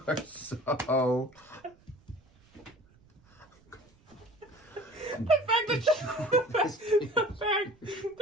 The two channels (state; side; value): noise; right; rumble, 30 dB below the sound